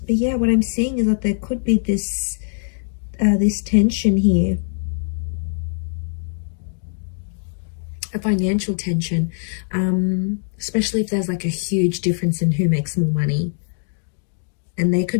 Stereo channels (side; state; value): right; silent; digital silence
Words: But yeah, what I'm seeing is that there could be this tension here. A financial tension, especially if there's like a huge difference in who makes more money. And they